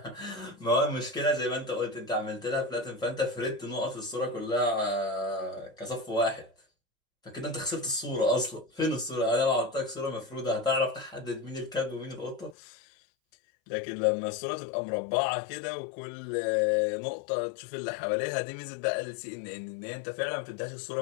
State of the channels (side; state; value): right; drops out; at 12.6 s